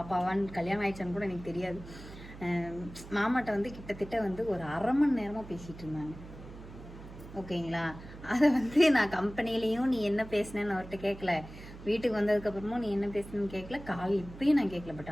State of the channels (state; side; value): noise; right; hum, 15 dB below the sound